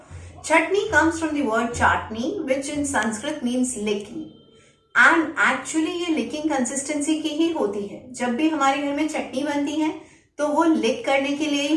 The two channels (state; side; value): identical; both; correlation 1.00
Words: Chutney comes from the word chatni, which in Sanskrit means licking. And actually ये licking consistency की ही होती है। जब भी हमारे घर में चटनी बनती है तो वो लिक करने के लिए